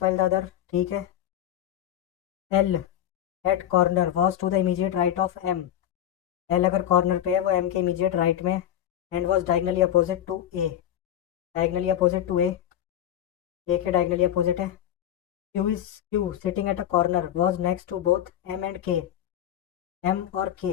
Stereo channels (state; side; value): quieter; right; 11.1 dB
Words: while the other, ठीक है। L at corner was to the immediate right of M। L अगर कॉर्नर पे है वो M के इमीडिएट राइट में। And was diagonally opposite to A। Diagonally opposite to A। A के diagonally opposite है। Q is Q sitting at a corner was next to both M and K। M or